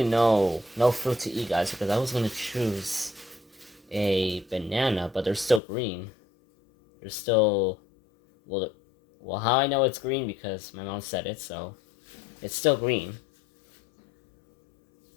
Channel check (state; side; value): drops out; right; at 5.6 s